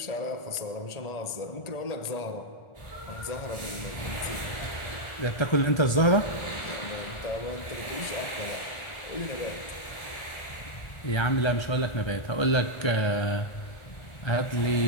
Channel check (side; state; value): right; late; 1.4 ms